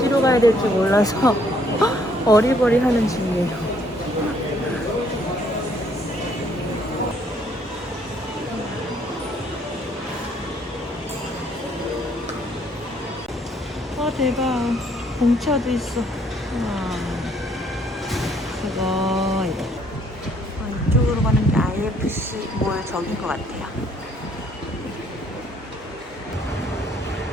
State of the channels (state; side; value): normal; both; correlation 0.65